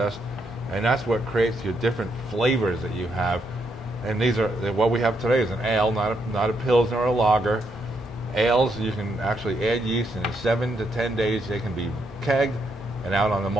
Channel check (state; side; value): normal; both; correlation 0.77